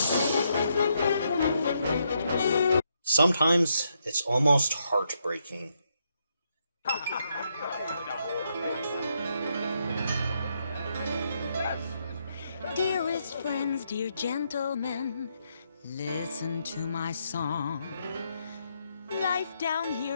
Sometimes it's almost heartbreaking. Dearest friends, dear gentlemen, listen to my song. Life down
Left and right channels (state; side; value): inverted; both; correlation -0.78